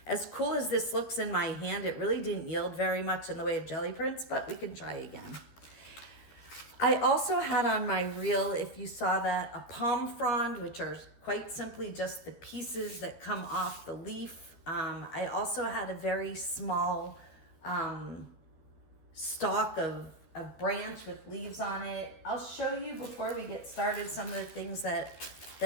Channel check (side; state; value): right; late; 13 ms